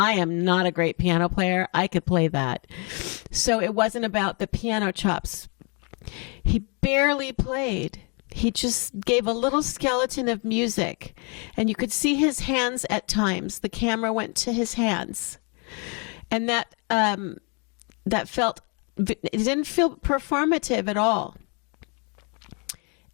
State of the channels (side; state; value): right; quieter; 35.5 dB